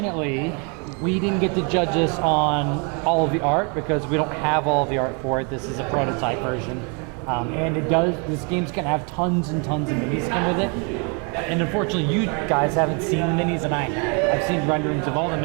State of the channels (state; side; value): quieter; left; 35.0 dB